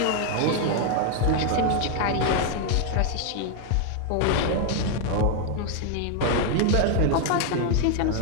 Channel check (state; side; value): different; both; correlation 0.00